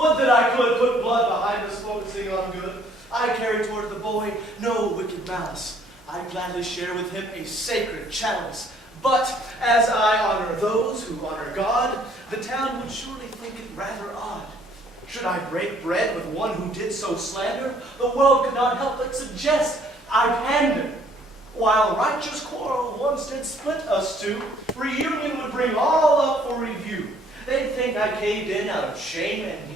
that I could put blood behind us focusing on good. I carry toward the boy no wicked malice. I gladly share with him a sacred chalice. But as I honor those who honor God, the town would surely think it rather odd. Should I break bread with one who did so slander, the world could not help but suggest I pander. While righteous quarrel once did split us two, reunion would bring all up for review. They'd think I caved in out of shame and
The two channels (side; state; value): both; normal; correlation 0.61